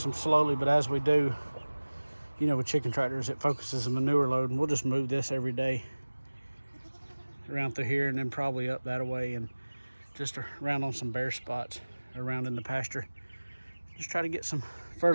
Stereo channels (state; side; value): inverted; both; correlation -1.00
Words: them slowly, but as we do, you know, with chicken tractors, it focuses the manure load, and we'll just move this every day around through here and then probably up that way and just around on some bare spots around in the pasture. Just try to get some